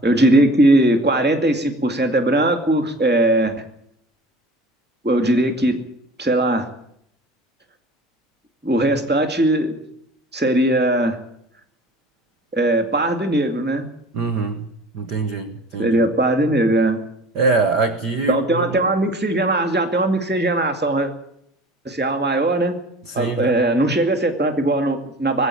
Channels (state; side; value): normal; both; correlation 0.43